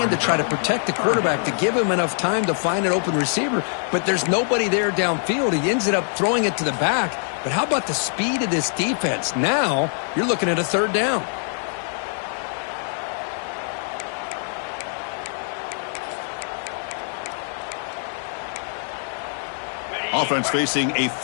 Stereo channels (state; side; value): silent; right; 63 dB below the other